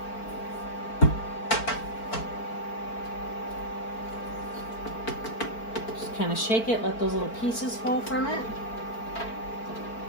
Just kind of shake it, let those little pieces fall from it.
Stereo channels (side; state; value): right; late; 4.4 ms